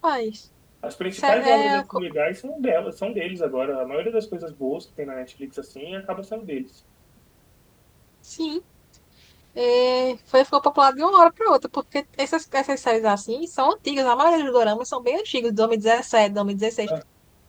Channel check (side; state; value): both; identical; correlation 1.00